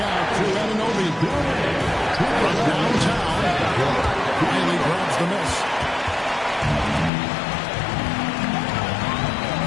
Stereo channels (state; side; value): drops out; right; at 7.1 s